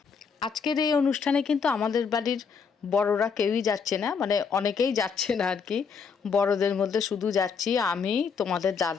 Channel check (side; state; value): right; quieter; 5.9 dB